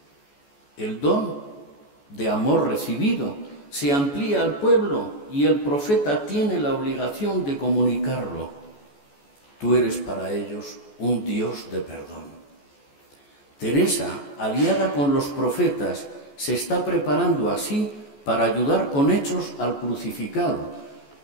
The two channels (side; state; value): right; late; 14 ms